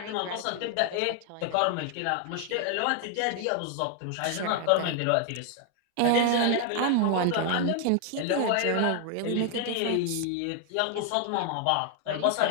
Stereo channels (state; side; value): different; both; correlation 0.00